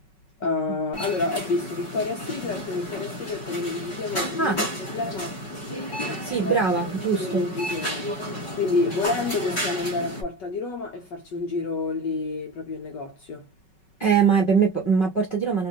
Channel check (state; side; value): late; right; 5.3 ms